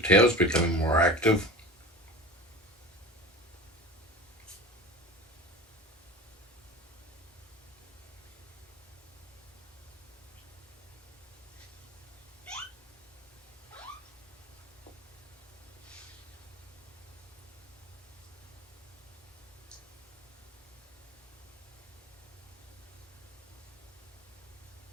becoming more active.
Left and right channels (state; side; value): normal; both; correlation 0.32